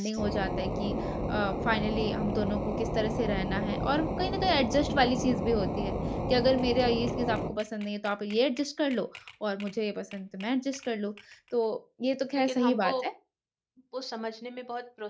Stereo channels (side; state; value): both; identical; correlation 1.00